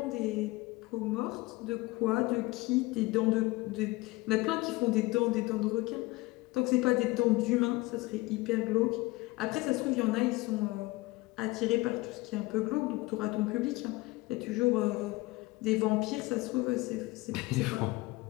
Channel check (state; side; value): quieter; right; 21.5 dB